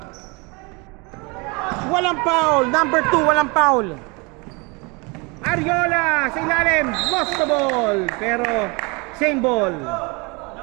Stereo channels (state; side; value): quieter; left; 28.9 dB